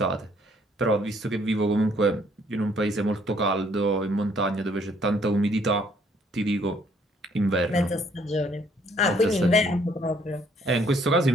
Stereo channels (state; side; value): normal; both; correlation 0.64